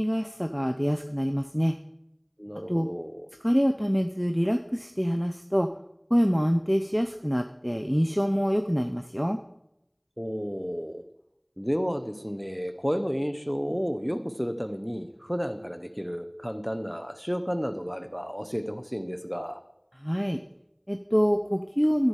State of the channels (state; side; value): identical; both; correlation 1.00